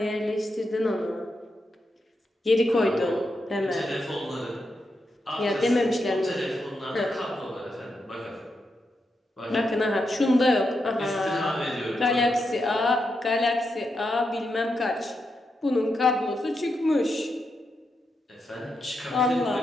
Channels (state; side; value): normal; both; correlation 0.85